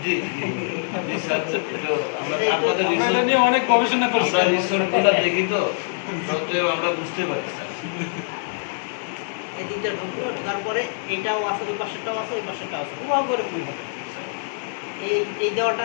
জি জি স্যার, তো আমরা আপনাদের আমরা এটা রিসোর্ট নিয়ে অনেক গবেষণা করছি। আমরা রিসোর্টগুলো দেখি তো সত্ত্বেও আমরা বুঝতে পারি স্যার। এই দিকটা ঢুকলো, ঢোকার পরে এইটাও আছে, ওই পাশেরটাও আছে, ওই পাশেরটাও আছে, পুরো করে ফুল হবে। এই দেওয়াটা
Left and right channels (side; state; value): right; silent; 63 dB below the other